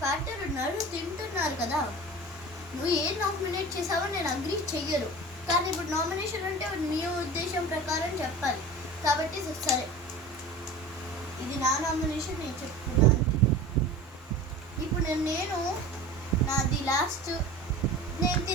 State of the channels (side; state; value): both; normal; correlation 0.36